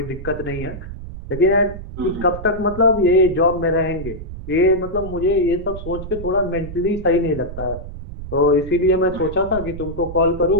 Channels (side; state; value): right; noise; rumble, 11 dB below the sound